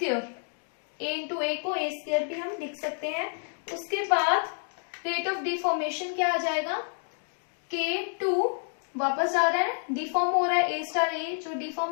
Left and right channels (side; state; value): right; silent; digital silence